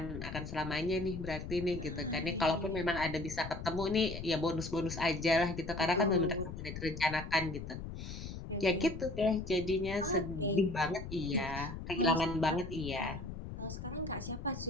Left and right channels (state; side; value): noise; left; rumble, 8 dB below the sound